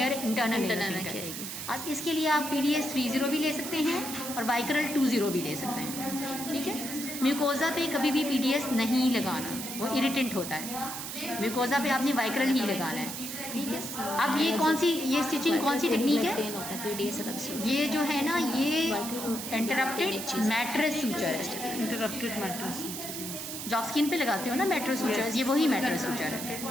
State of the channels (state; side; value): noise; right; hiss, 7 dB below the sound